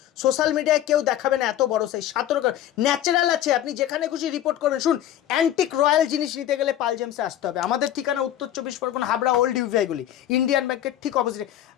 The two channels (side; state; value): right; quieter; 11.9 dB